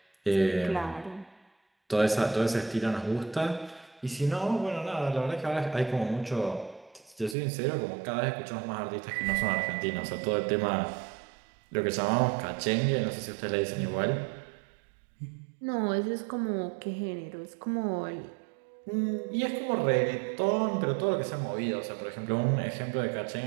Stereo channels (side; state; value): left; drops out; at 7.4 s